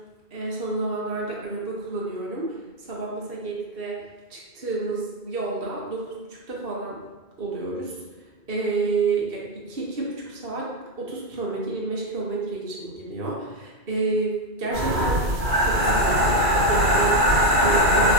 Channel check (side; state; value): left; late; 2.3 ms